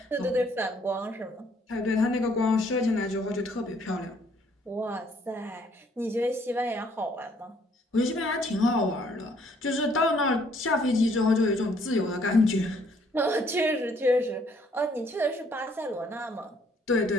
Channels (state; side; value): normal; both; correlation 0.64